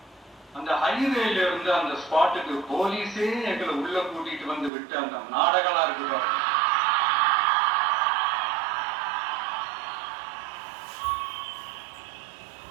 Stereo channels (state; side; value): drops out; left; at 4.7 s